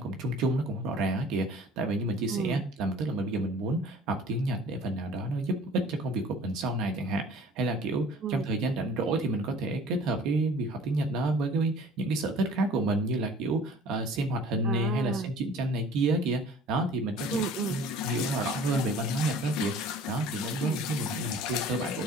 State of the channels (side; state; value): both; normal; correlation 0.48